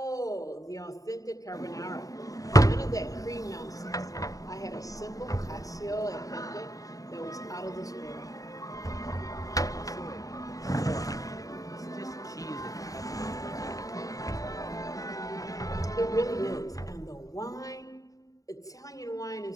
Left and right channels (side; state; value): right; late; 0.17 ms